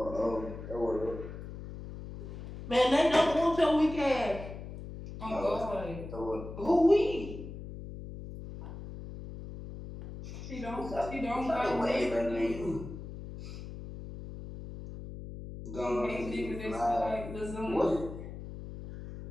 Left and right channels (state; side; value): noise; left; hum, 11 dB below the sound